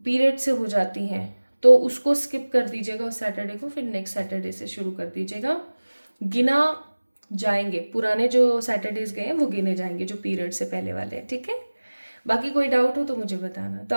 से हो जाती हैं तो उसको स्किप कर दीजिएगा उस सैटरडे को, फिर नेक्स्ट सैटरडे से शुरू कर दीजिएगा। गिना जाएंगे, पुराने जो सैटरडेज गए हैं वो गिने जाएंगे जो पीरियड से पहले वाले हैं, ठीक है। बाकी कोई डाउट हो तो मुझे बताना। तो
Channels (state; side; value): inverted; both; correlation -1.00